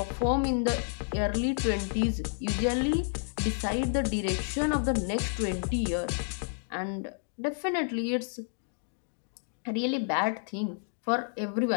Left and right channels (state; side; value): silent; right; digital silence